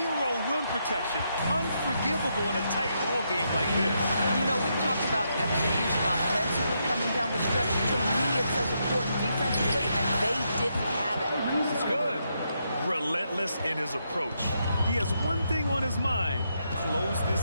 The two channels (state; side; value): inverted; both; correlation -0.80